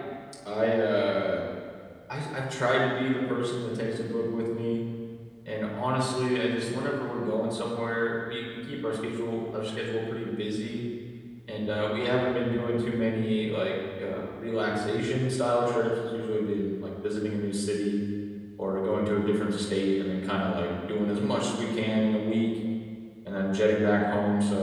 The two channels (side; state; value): both; identical; correlation 1.00